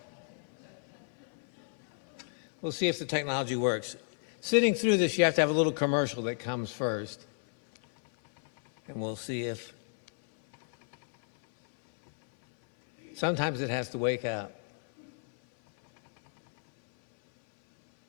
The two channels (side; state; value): right; silent; 57 dB below the other